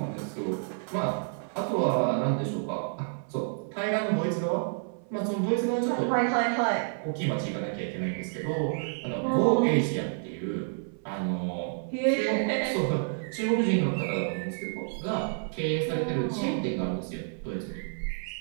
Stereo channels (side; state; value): left; silent; 58 dB below the other